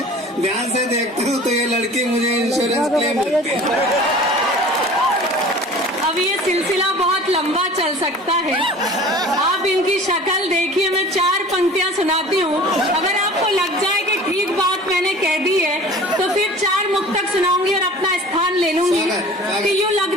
ध्यान से देखता हूँ तो ये लड़की मुझे इंश्योरेंस क्लेम लगती है। अब ये सिलसिला बहुत लंबा चल सकता है, आप इनकी शक्ल देखिए। मैं 4 पंक्तियां सुनाती हूँ, अगर आपको लग जाए कि ठीक बात मैंने कह दी है तो फिर 4 मुक्तक सुनाऊंगी और अपना स्थान ले लूंगी। कि यूँ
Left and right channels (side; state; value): both; normal; correlation 0.43